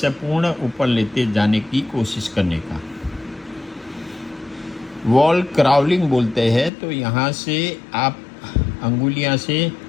पूर्ण ऊपर लेते जाने की कोशिश करने का। वॉल क्राउलिंग बोलते हैं। तो यहाँ से आप अंगुलियाँ से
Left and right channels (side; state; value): right; drops out; at 6.7 s